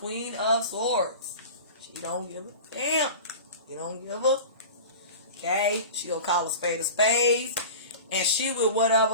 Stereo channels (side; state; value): both; inverted; correlation -0.34